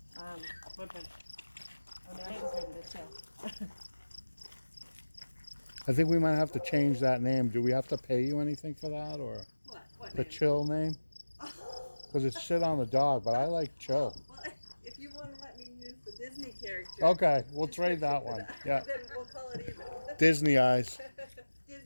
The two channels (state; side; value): inverted; both; correlation -1.00